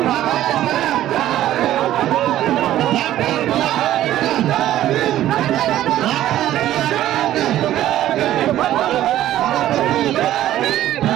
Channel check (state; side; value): quieter; left; 13.2 dB